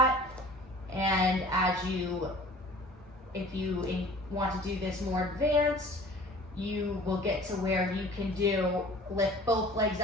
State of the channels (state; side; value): normal; both; correlation 0.46